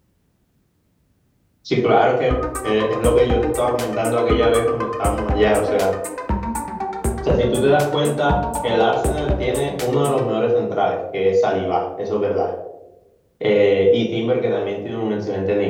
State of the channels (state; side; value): identical; both; correlation 1.00